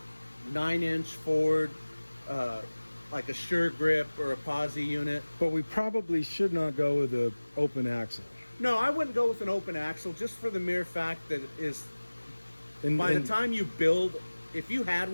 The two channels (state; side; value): inverted; both; correlation -1.00